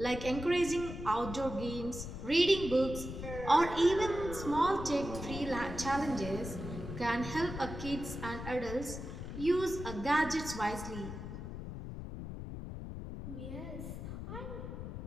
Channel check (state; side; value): noise; left; rumble, 8 dB below the sound